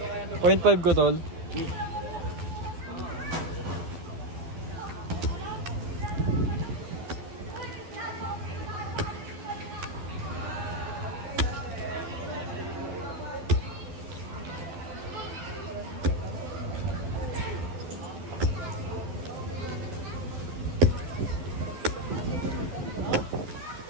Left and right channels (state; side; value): late; left; 12 ms